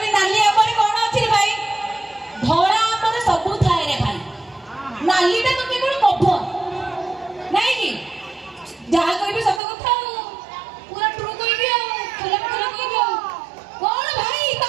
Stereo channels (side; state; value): left; drops out; at 9.6 s